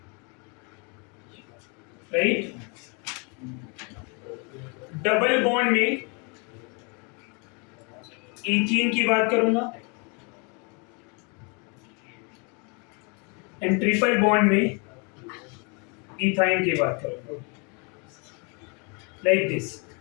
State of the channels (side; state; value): right; quieter; 33.3 dB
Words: राइट, डबल बॉन्ड में ईथीन की बात करूंगा एंड ट्रिपल बॉन्ड में इथाइन की बात करूंगा, लाइक दिस।